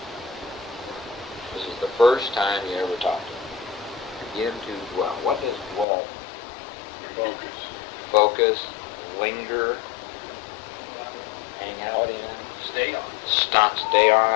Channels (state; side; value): drops out; right; at 5.9 s